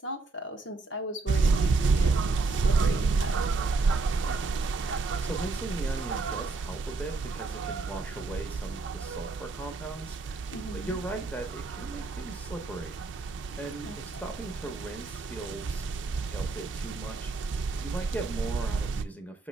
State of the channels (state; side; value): quieter; left; 3.7 dB